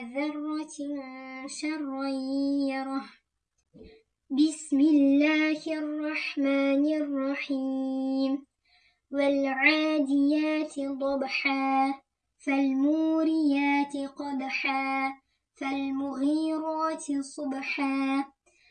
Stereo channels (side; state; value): both; identical; correlation 1.00